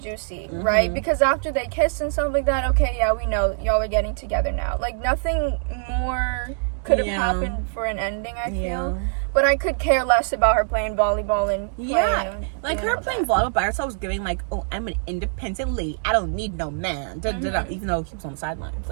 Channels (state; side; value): silent; left; digital silence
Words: right? Because after they kissed and stuff like that, okay, yeah, we know y'all are getting together now. Like, nothing more could have happened for an ending, I feel. But I could care less about her playing volleyball and like her playing volleyball by herself was giving like, oh, I'm an independent lady. I don't need no man. Even though he was on the sidelines,